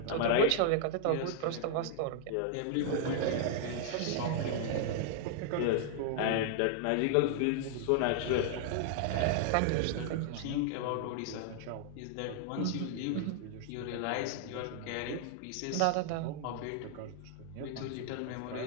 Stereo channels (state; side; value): different; both; correlation -0.01